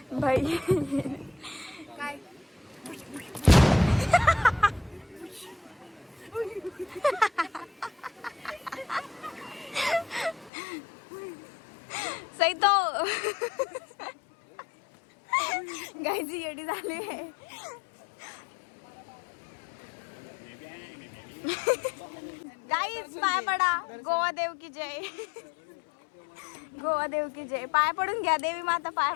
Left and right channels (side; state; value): right; drops out; at 10.5 s